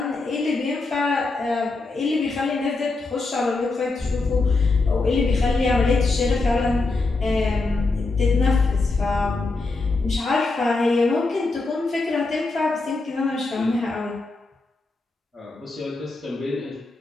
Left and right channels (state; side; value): quieter; right; 3.5 dB